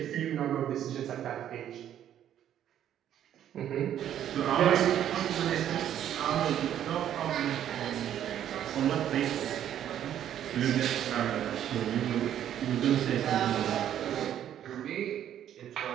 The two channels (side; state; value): left; quieter; 10.6 dB